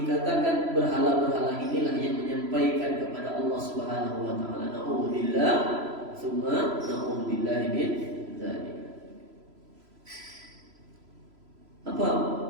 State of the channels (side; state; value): left; late; 3.0 ms